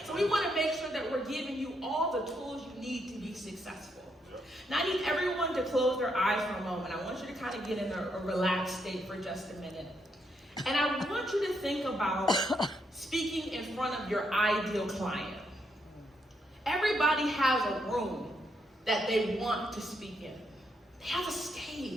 So we want to make sure that we're giving you all the tools you need to be successful. Now I need everyone to close their eyes for a moment. I want you to kind of get in a relaxed state for just a minute. And I want you to think about speaking in front of your ideal client. Everybody has a room that they want to speak in. They have a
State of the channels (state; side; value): normal; both; correlation 0.77